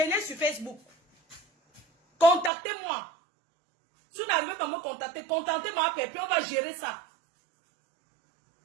sur Facebook. Contactez-moi. Sur va me contacter, contactez ma pépé, on va gérer ça.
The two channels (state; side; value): drops out; left; at 2.5 s